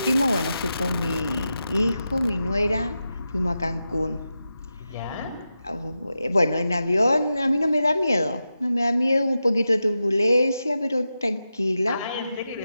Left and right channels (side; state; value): both; inverted; correlation -0.91